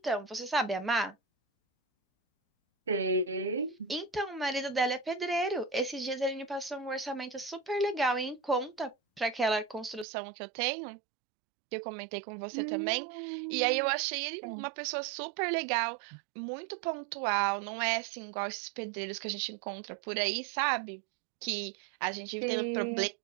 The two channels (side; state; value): left; drops out; at 10.1 s